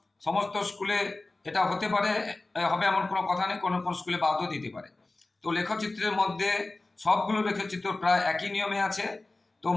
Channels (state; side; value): quieter; right; 3.1 dB